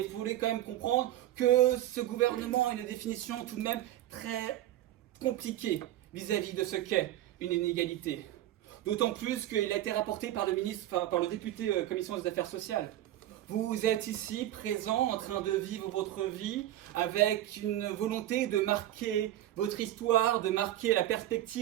vous voulez quand même comprendre que ce gouvernement a une définition tout de même très compliquée vis-à-vis de ce qu'est une inégalité. D'autant plus qu'il a été rapporté par le député Commission des Affaires sociales. Vous êtes ici, présent, en train de vivre votre vie, avec une volonté de marquer votre histoire, de marquer la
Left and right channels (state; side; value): quieter; left; 13.5 dB